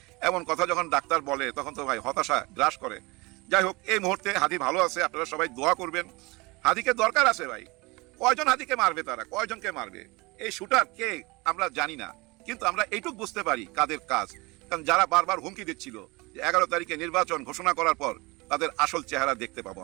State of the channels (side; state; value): left; quieter; 24.7 dB